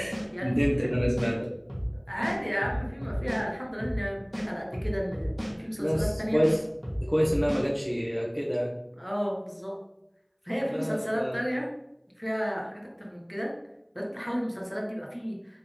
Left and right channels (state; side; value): identical; both; correlation 1.00